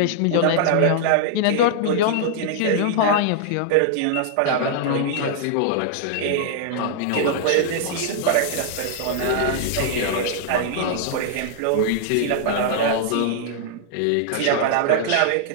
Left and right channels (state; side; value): different; both; correlation -0.01